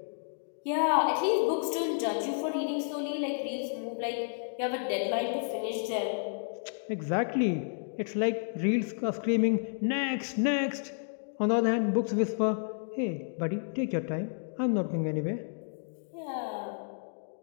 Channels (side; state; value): right; silent; digital silence